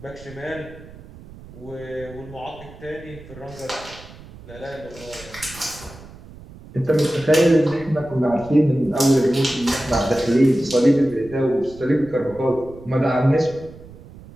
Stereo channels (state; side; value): noise; right; rumble, 18 dB below the sound